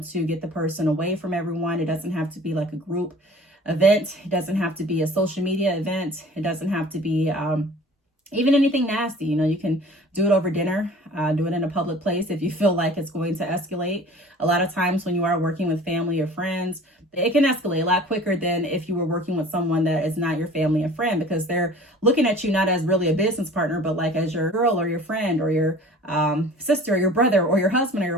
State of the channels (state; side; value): normal; both; correlation 0.46